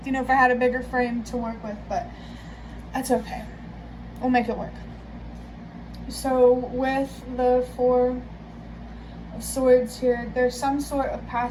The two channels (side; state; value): both; identical; correlation 1.00